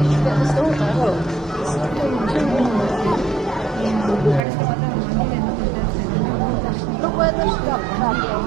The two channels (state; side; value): drops out; left; at 4.5 s